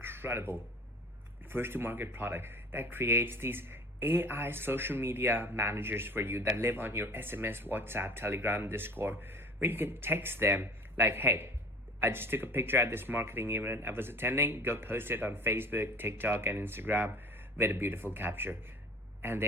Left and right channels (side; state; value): both; normal; correlation 0.42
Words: first-to-market product that creates these AI social media managers for you that live on your SMS, WhatsApp, Telegram, Discord, where you can text them like, hey, I just took a picture at this marketing event I was attending. Go post it on Facebook, TikTok, and Instagram with a beautiful capture. And